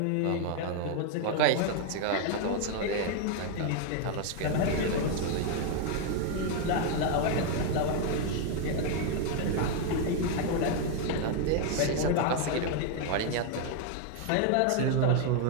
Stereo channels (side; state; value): both; different; correlation 0.01